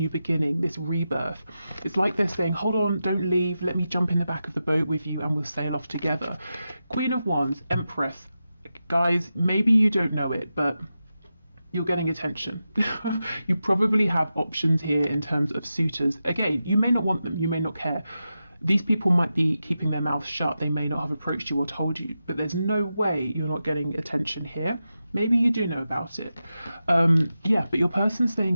beginning, this rebirth. It's like they're saying, hold on, don't leave. Let me jump in the back of the boat with you and we'll sail off together. Queen of Wands, Empress. Guys, maybe you don't know it, but you're getting attention. You probably have options here in terms of suitors. Again, you may not want them, you may not care. These people might be keeping their mouths shut, they may not have approached you or told you, but there's no way you're not getting attention here. Maybe you do know about it. But your person's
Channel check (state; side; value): inverted; both; correlation -0.91